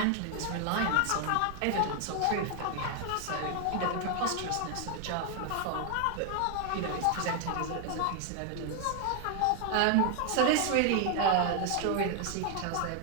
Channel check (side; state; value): both; different; correlation 0.00